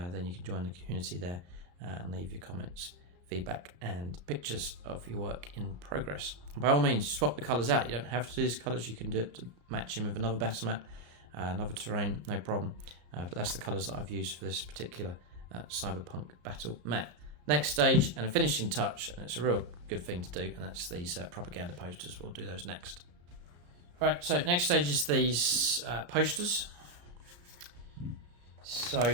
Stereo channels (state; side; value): late; left; 34 ms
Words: you can join the community there and leave your comments, feedback and pictures of your work in progress. And by all means, swap the colours out. You don't have to do these colours. You can do it to match them with another battle mat, another terrain, no problem. But that's the colours that I've used for this particular cyberpunk battle mat. Next stage and a finishing touch, and it's a real good thing to do, and that's these propaganda posters. We'll do those next. Right, so next stage is these posters.